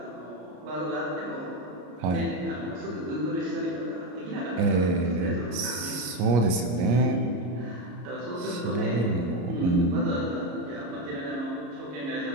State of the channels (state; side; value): late; left; 33 ms